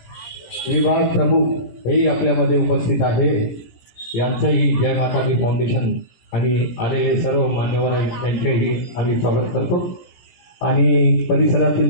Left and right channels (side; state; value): right; late; 17 ms